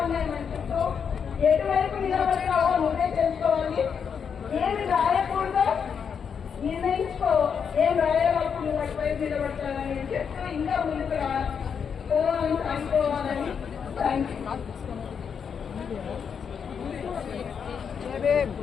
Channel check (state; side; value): quieter; right; 6.9 dB